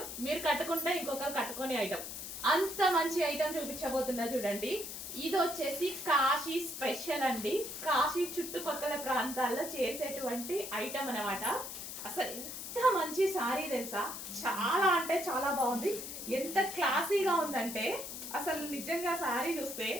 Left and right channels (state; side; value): noise; left; hiss, 8 dB below the sound